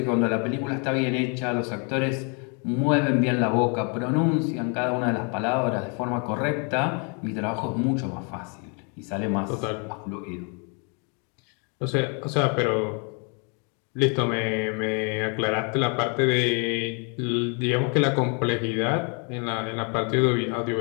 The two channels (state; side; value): quieter; right; 36.6 dB